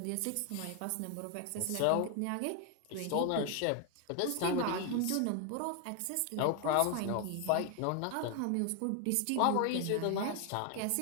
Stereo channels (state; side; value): different; both; correlation 0.00